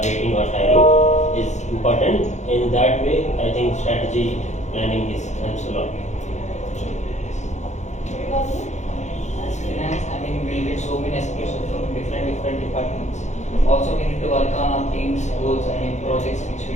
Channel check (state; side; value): late; right; 0.34 ms